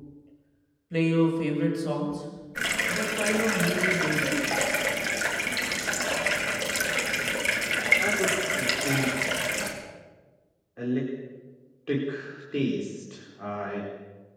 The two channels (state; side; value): identical; both; correlation 1.00